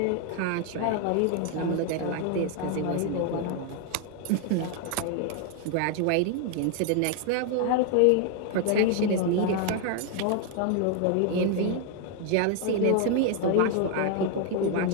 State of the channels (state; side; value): different; both; correlation 0.01